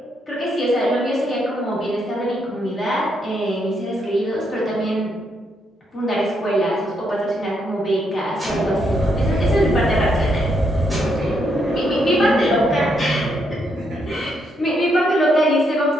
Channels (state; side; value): normal; both; correlation 0.76